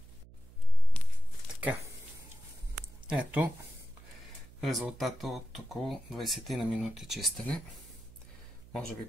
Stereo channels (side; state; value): right; noise; hum, 20 dB below the sound